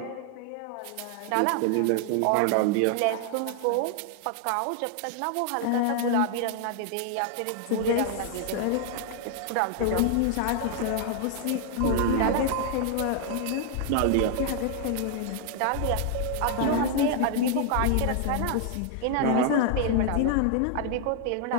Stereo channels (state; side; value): different; both; correlation 0.00